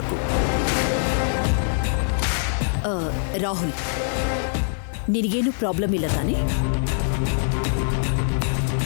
ರಾಹುಲ್, ನಿನಗೇನು ಪ್ರಾಬ್ಲಮ್ ಇಲ್ಲ ತಾನೆ?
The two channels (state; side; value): silent; right; digital silence